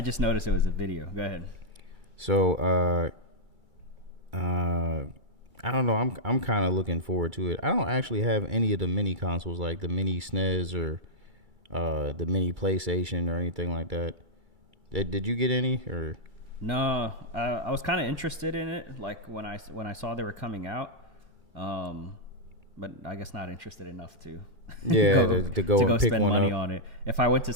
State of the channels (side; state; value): left; late; 2.2 ms